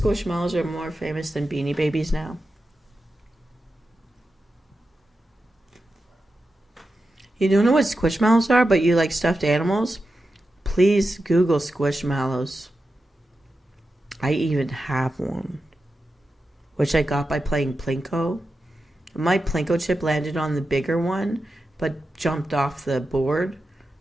are more famous than Beanie Babies now? You don't know what Squishmallows are, but you like stuffed animals? Please Google Squishmallows. I even have one, which I got by playing Plinko. My Plinko chip landed on the bigger one, but jumped off the board,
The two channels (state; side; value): normal; both; correlation 0.90